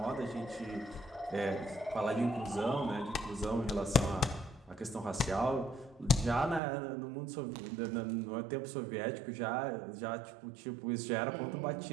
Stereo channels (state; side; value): drops out; left; at 6.6 s